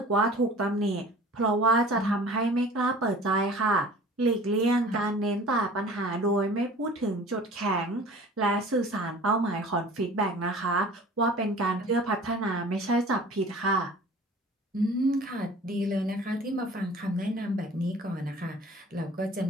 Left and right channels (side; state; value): both; normal; correlation 0.45